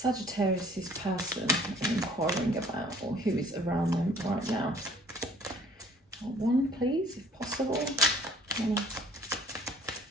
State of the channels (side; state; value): both; normal; correlation 0.54